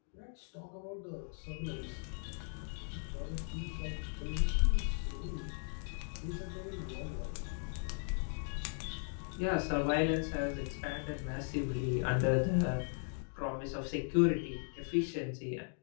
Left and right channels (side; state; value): right; silent; 53 dB below the other